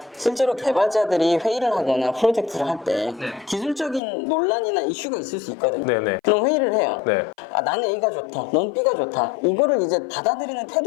실제로 개발자들이 회의를 하거나 프로젝트를 할 때 기술적인 논란이나 이슈가 있을 수 있거든요. 네네. 그럼 회의를 해요. 네. 나는 A가 좋다, 넌 B가 좋다. 이거를 이제 받아들이는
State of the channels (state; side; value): drops out; right; at 4.0 s